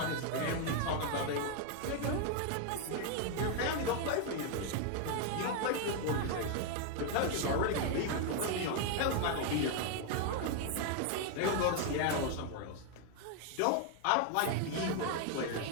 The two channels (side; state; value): both; different; correlation 0.01